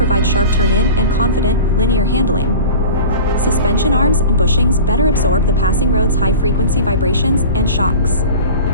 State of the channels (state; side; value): inverted; both; correlation -0.35